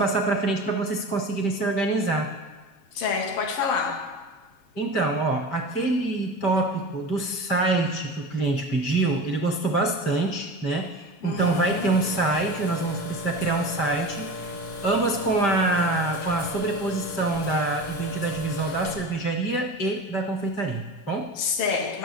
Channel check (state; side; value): late; right; 7.4 ms